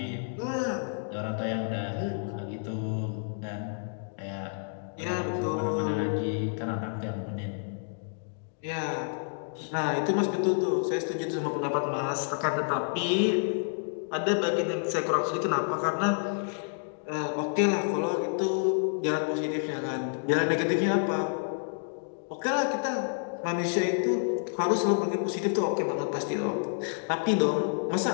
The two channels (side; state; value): right; silent; digital silence